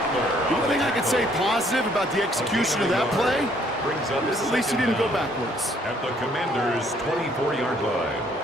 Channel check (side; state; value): both; normal; correlation 0.64